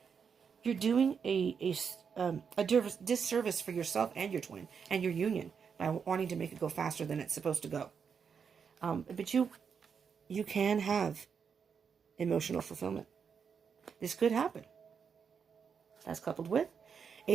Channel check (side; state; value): left; quieter; 6.5 dB